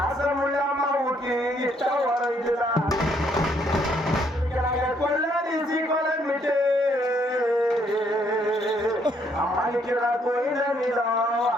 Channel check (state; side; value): normal; both; correlation 0.69